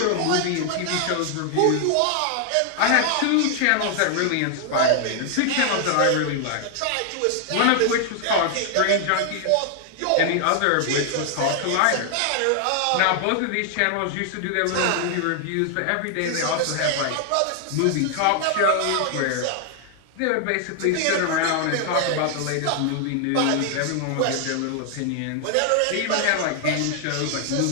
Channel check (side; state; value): both; different; correlation 0.00